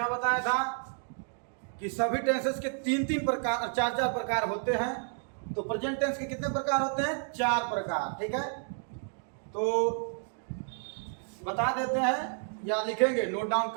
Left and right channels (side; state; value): left; silent; 57 dB below the other